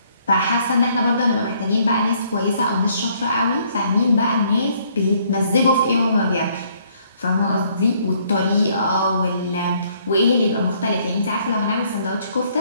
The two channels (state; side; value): inverted; both; correlation -0.66